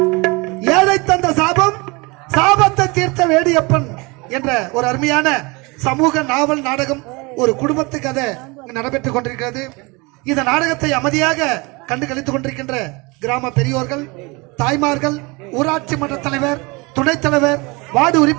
ஏழை தந்த சாபம் சாபத்தை தீர்த்த வேடியப்பன் என்ற ஒரு அருமையான சமூக நாவல் நாடகம் ஒரு குடும்பத்து கதை நடைபெற்றுக் கொண்டிருக்கிறது. இந்த நாடகத்தை அமைதியாக கண்டு கழித்துக் கொண்டிருக்கின்ற கிராம பெரியோர்கள், தாய்மார்கள், ஊராட்சி மன்ற தலைவர், துணைத் தலைவர், வார்டு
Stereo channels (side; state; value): left; quieter; 26.4 dB